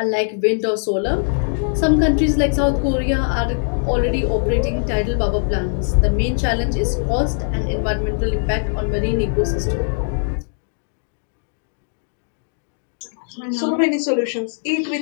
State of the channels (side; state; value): right; silent; digital silence